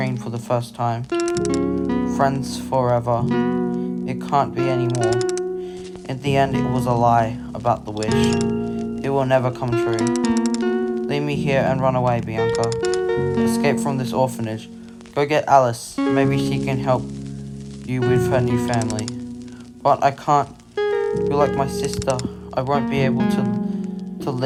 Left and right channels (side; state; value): both; identical; correlation 1.00